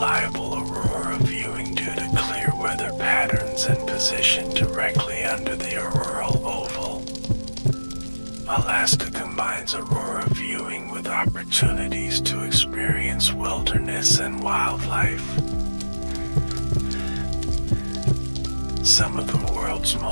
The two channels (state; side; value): inverted; both; correlation -1.00